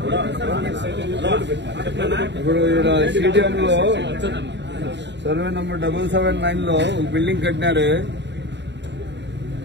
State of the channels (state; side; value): late; left; 0.51 ms